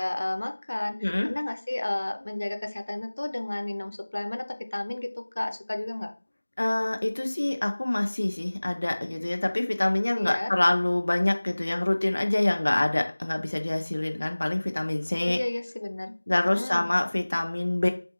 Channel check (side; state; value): both; inverted; correlation -1.00